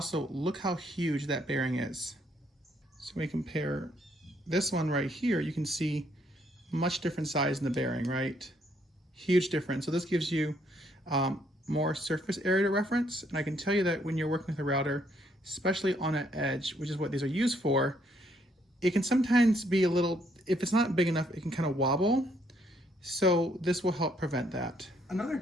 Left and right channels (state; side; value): normal; both; correlation 0.70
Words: look how huge that bearing is. So we compare this one right here, you can see much different size in the bearing, right? Huge difference. So this gives you more surface area to reference, and I can tell you that when you're working with a router, especially on an edge, which is what these are used for, it can sometimes be a little, if it's not big enough, it can kind of wobble. So this will help prevent that. Another